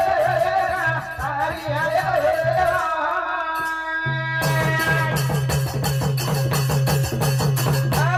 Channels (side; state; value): both; identical; correlation 1.00